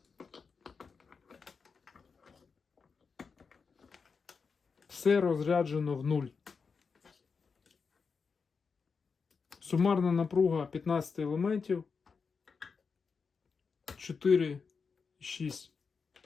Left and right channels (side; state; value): right; quieter; 5.3 dB